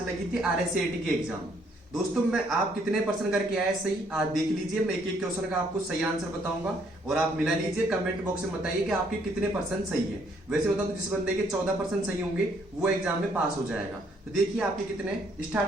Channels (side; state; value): both; normal; correlation 0.67